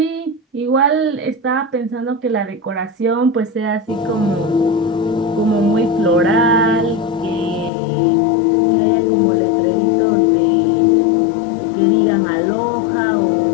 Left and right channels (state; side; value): drops out; right; at 7.7 s